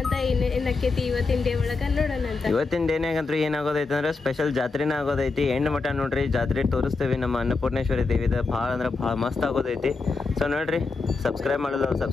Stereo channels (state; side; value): quieter; right; 4.1 dB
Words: ಅಂತ. ಏನಕ್ಕೈತಿ ಇವತ್ತಿನ ಡೇ ಒಳಗೆ ನೋಡೋಣ ಅಂತ. ಇವತ್ತಿನ ಡೇನಾಗಂತ್ರಿ ಏನಾಗೋದೈತೆ ಅಂದ್ರೆ ಸ್ಪೆಷಲ್ ಜಾತ್ರೆನ ಆಗೋದೈತಿ. ಎಂಡ್ ಮಠ ನೋಡ್ರಿ ಜಾತ್ರೆ ತೋರಿಸ್ತೀವಿ ನಮ್ಮ ಅನ್ನಪೂರ್ಣೇಶ್ವರಿ ದೇವಿದ. ಭಾಳ ಅಂದ್ರೆ ಭಾಳ ಮಸ್ತ್ ಆಗೋದೈತಿ. ಸೊ ನೋಡ್ರಿ, ಸಬ್ಸ್ಕ್ರೈಬ್ ಮಾಡೋದು